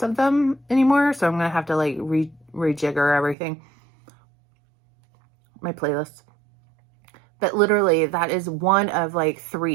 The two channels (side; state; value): left; drops out; at 3.4 s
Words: of them anymore. So I'm going to have to like rejigger everything, my playlist. But literally that is one of like